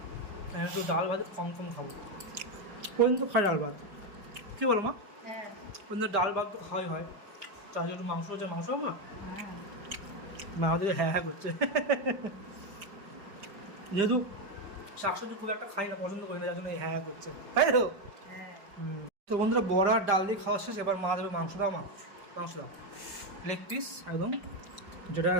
একটু ডাল ভাত কম কম খাবো। পর্যন্ত খাই ডাল ভাত, কী বলো মা? হ্যাঁ পর্যন্ত ডাল ভাত তো খাওয়াই হয়, তার একটু মাংস হচ্ছে, মাংস মা হ্যাঁ মা আমাদের হ্যাঁ হ্যাঁ করছে। যেহেতু শাকসবজি খুব একটা খাই না, পছন্দ করি না, যার জন্য এই হ্যাঁ হ্যাঁ করছে, তাই তো? হ্যাঁ। তো বন্ধুরা বড়া ডাল দিয়ে খাওয়া শেষ, এবার মা দেবে মাংস। দাও মা, মাংস দাও, লেগ পিস একদম, যেটা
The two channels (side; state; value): left; late; 5.0 ms